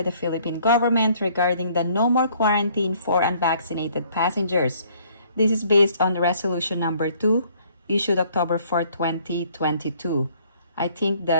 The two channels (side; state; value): both; inverted; correlation -0.61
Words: the Philippine government regarding the no more quarantine for unvaccinated passengers. This is based on Resolution number 2, issued October 4, 2022. I think